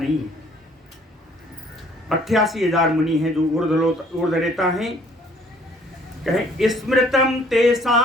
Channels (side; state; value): both; normal; correlation 0.59